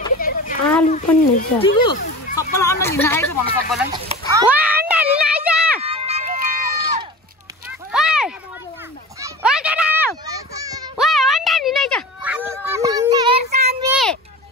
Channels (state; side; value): normal; both; correlation 0.33